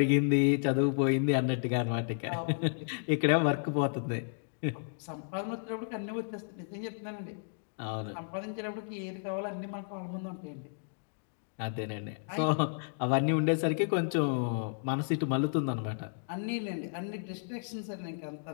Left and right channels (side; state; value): right; silent; digital silence